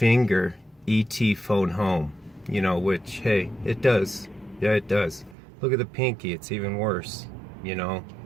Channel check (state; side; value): drops out; left; at 5.4 s